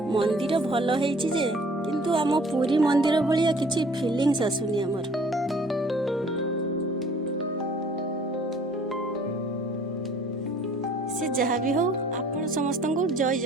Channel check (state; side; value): normal; both; correlation 0.54